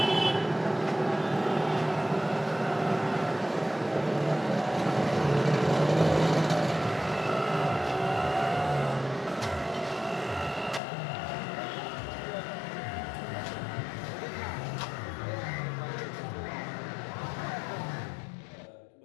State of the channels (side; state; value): right; drops out; at 10.8 s